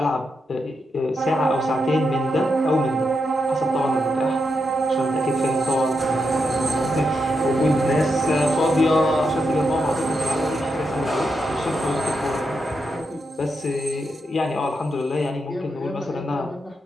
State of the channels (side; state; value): both; normal; correlation 0.84